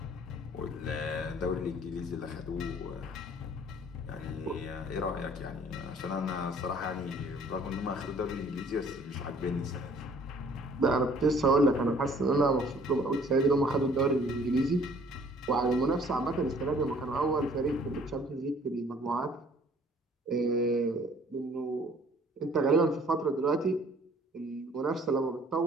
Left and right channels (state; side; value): normal; both; correlation 0.56